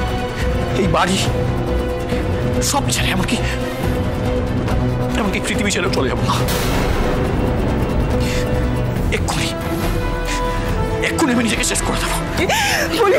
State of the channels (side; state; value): both; identical; correlation 1.00